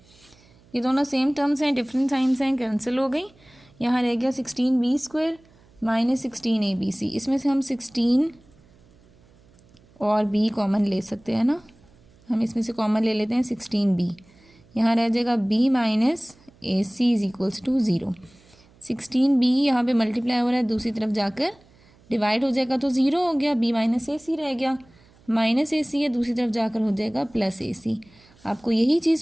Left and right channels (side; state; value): right; noise; hum, 29 dB below the sound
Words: ये दोनों सेम टर्म्स हैं, डिफरेंट साइंस हैं, कैंसिल हो गई। यहाँ रह गया 16B² -16 ABC। इसमें से हम 16 और B कॉमन ले सकते हैं ना, हम इसमें से कॉमन ले लेते हैं 16B। यहाँ रह जाएगा B - AC is equals to 0। 16B यहाँ पे मल्टीप्लाई हो रहा है, दूसरी तरफ जाकर डिवाइड हो जाएगा तो 0 हो गया, B - AC रह गया, -AC है, दूसरी तरफ जाकर हो जाएगा +AC। आपको यही